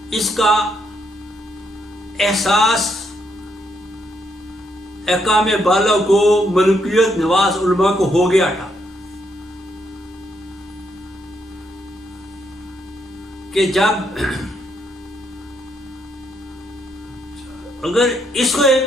اس کا احساس احکام بالا کو، ملکیت نواز علماء کو ہو گیا تھا کہ جب اگر اس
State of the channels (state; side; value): normal; both; correlation 0.76